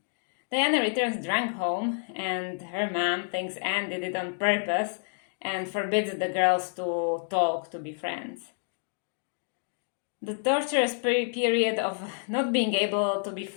Diana returns drunk home, and her mom thinks Anne did it on purpose and forbids the girls to talk, to be friends. The torturous period of not being able to be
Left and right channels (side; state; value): right; silent; digital silence